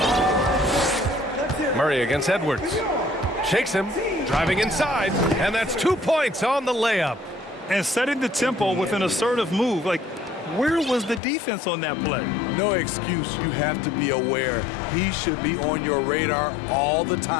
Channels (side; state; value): right; drops out; at 11.2 s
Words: Murray against Edwards. Shakes him, driving inside, and that's 2 points on the layup. And setting the tempo with an assertive move. Like, where was the defense on that play? No excuse. You have to be aware. He should be on your radar all the